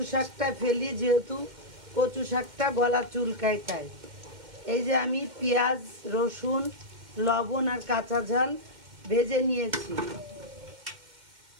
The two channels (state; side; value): late; left; 2.1 ms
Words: শাকটা ফেলি, যেহেতু কচু শাকটা গলা চুলকায় তাই। এই যে আমি পেঁয়াজ, রসুন, লবণ আর কাঁচা ঝাল ভেজে নিয়েছি।